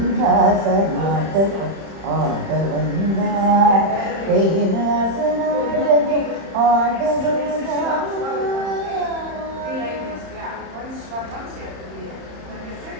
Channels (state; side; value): late; left; 31 ms